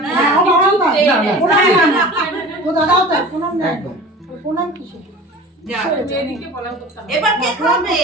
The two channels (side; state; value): both; normal; correlation 0.38